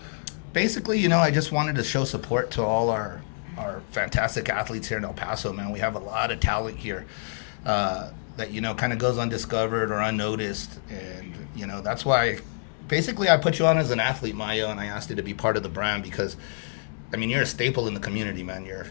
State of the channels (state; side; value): silent; right; digital silence